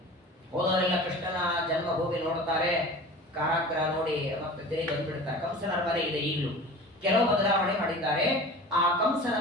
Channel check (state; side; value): normal; both; correlation 0.38